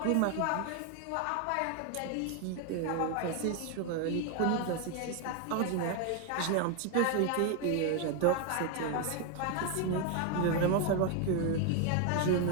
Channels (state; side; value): different; both; correlation 0.01